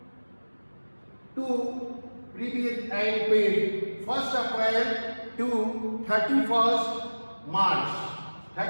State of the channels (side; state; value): both; inverted; correlation -1.00